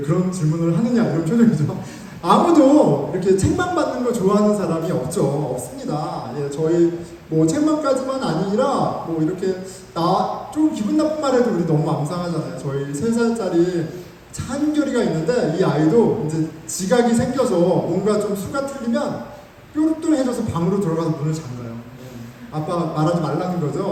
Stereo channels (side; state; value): both; identical; correlation 1.00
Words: 질문을 하느냐 이런 표정이죠. 아무도 이렇게 책만 받는 거 좋아하는 사람이 없습니다. 예, 저희 뭐 책만까지만 아니라 뭐 이렇게 좀 기분 나쁜 말해도 우리 너무 망상하잖아요. 저희 3살짜리 찬결이가 있는데 이 아이도 이제 지각이 생겨서 뭔가 좀 수가 틀리면 뾰루뚱해져서 방으로 들어가서 문을 잠가요. 예, 아빠 말하지 말라는